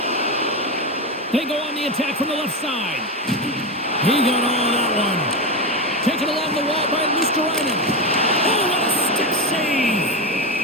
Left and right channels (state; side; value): normal; both; correlation 0.15